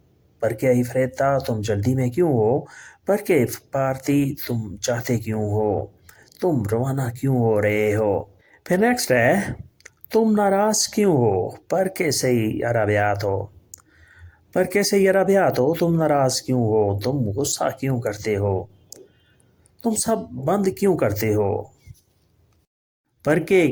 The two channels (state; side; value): identical; both; correlation 1.00